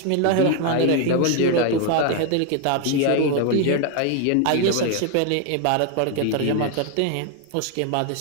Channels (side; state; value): both; different; correlation 0.01